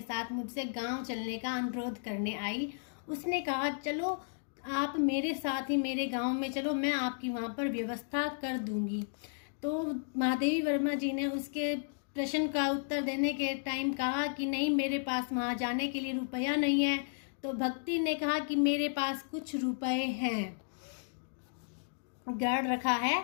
साथ मुझसे गांव चलने का अनुरोध करने आई। उसने कहा, चलो आप मेरे साथ ही मेरे गांव में चलो, मैं आपकी वहां पर व्यवस्था कर दूंगी। तो महादेवी वर्मा जी ने उसके प्रश्न का उत्तर देने के टाइम कहा कि नहीं, मेरे पास वहां जाने के लिए रुपया नहीं है। तो भक्ति ने कहा कि मेरे पास कुछ रुपए हैं, गार्ड रखा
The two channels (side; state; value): right; silent; digital silence